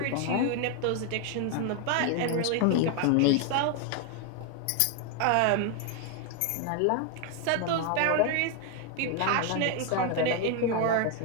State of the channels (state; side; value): different; both; correlation 0.01